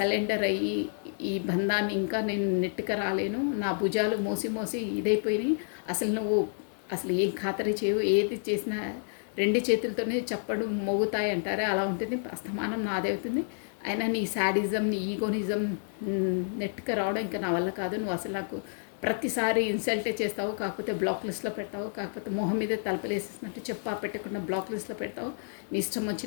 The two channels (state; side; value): silent; right; digital silence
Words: అయ్యి ఈ బంధాన్ని ఇంకా నేను నెట్టుక రాలేను, నా భుజాలు మోసి మోసి ఇదైపోయినాయి, అసలు నువ్వు అసలు ఏం ఖాతరి చేయవు, ఏది చేసినా రెండు చేతులతోనే చప్పడు మోగుతాయి అంటారే అలా ఉంటుంది. అస్తమానం నాదే అవుతుంది. అయినా నీ శాడిజం, నీ ఈగోనిజం నెట్టుక రావడం ఇంకా నా వల్ల కాదు. నువ్వు అసలు నాకు ప్రతిసారి ఇన్సల్టే చేస్తావు, కాకపోతే బ్లాక్ లిస్ట్లో పెడతావు, కాకపోతే మొహం మీద తలపలేసేసినట్టు చెప్పా పెట్టకుండా బ్లాక్ లిస్ట్లో పెడతావు, నీ ఇష్టం